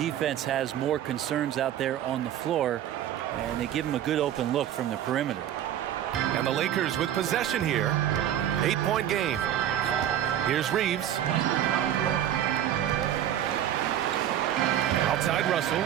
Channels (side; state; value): left; quieter; 11.0 dB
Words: has more concerns out there on the floor, and they give him a good open look from the perimeter. And the Lakers with possession here. 8-point game. Here's Reeves. Outside Russell.